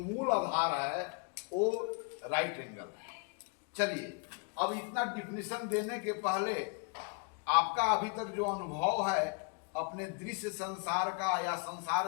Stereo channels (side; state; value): right; quieter; 35.1 dB